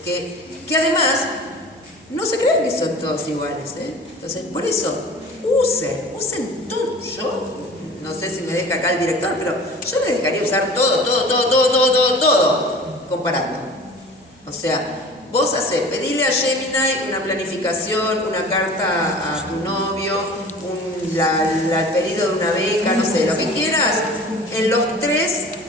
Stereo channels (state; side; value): normal; both; correlation 0.41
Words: que además no se creen que son todos iguales, ¿eh? Entonces, por eso, usen todo. Yo no sé si me deja acá el director, pero yo les dejaría usar todo, comparando. O sea, vos pedile a Gemini una planificación, una carta a tu novio, el pedido de una beca, no sé, lo que quieras, en los